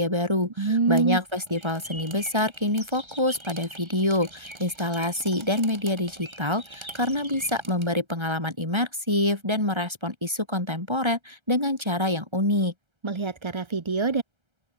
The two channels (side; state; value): left; late; 1.3 ms